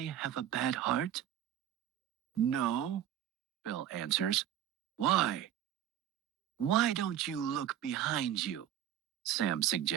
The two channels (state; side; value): quieter; left; 11.0 dB